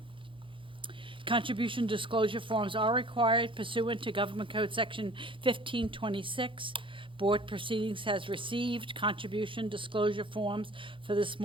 Contribution disclosure forms are required pursuant to Government Code Section 1526. Board proceedings has received contribution disclosure forms for this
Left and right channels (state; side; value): late; left; 0.25 ms